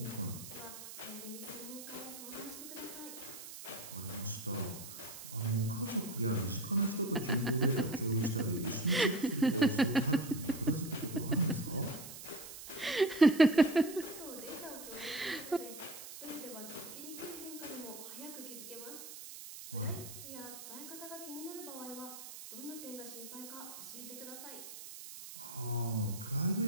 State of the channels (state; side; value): noise; right; hiss, 12 dB below the sound